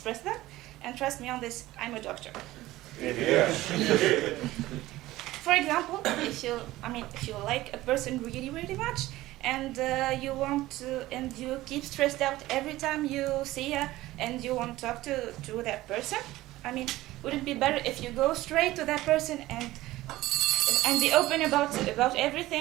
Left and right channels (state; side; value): quieter; left; 17.0 dB